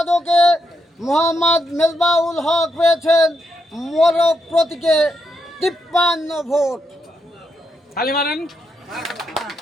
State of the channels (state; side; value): normal; both; correlation 0.81